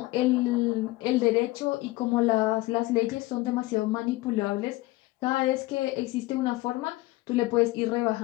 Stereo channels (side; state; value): right; quieter; 19.4 dB